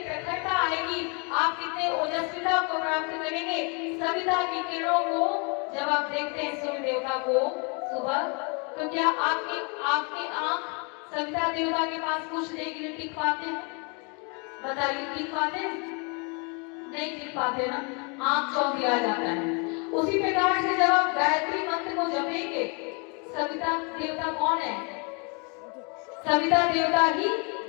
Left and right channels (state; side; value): quieter; right; 34.2 dB